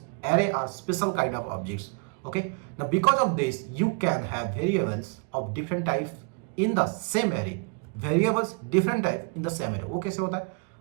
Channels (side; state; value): left; quieter; 35.8 dB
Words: array are special kind of objects, okay। Now because of this you can have variables of different type in the same array, वो कैसे होता है?